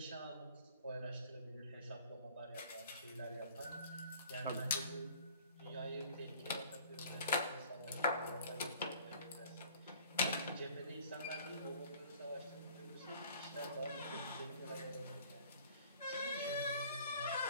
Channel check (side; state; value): both; inverted; correlation -0.52